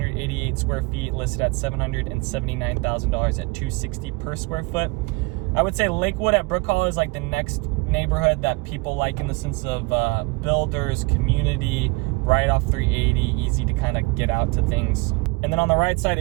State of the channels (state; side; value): quieter; left; 25.8 dB